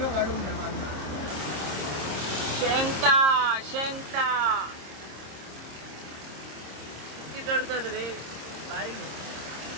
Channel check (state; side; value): late; left; 26 ms